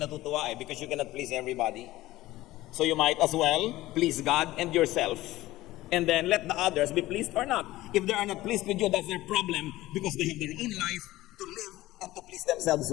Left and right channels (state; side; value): quieter; right; 17.0 dB